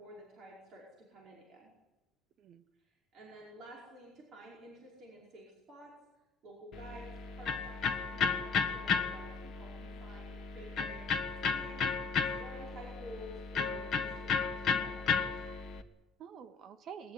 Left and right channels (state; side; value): quieter; right; 5.1 dB